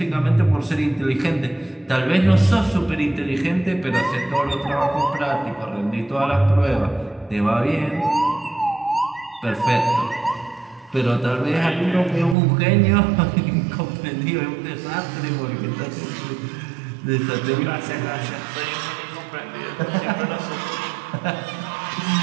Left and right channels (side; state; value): left; drops out; at 12.4 s